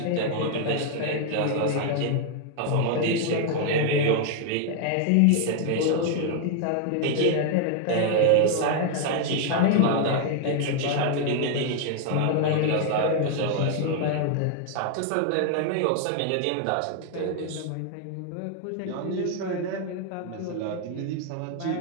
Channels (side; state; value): both; different; correlation 0.00